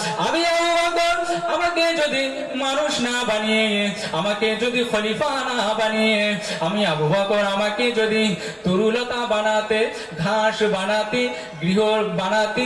আমি আবু বকর, আমাকে যদি মানুষ না বানিয়ে, আমাকে যদি খলিফা না বানিয়ে, আমি আবু বকর, আমাকে যদি তরুলতা বানাতে, ঘাস বানাতে, গৃহ বানাতে,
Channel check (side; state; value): both; identical; correlation 1.00